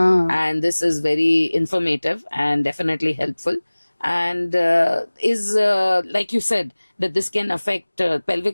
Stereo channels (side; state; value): both; inverted; correlation -1.00